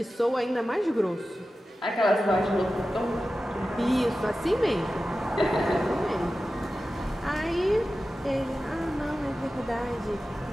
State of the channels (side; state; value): both; normal; correlation 0.94